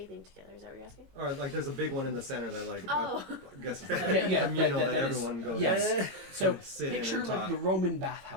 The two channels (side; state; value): left; late; 21 ms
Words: together. Is that what you're asking? Or like there's a big one in the center that like Oh. I guess it's like Yeah, communal that that is- everyone goes. yes. So sit in picture and like talk. the Roman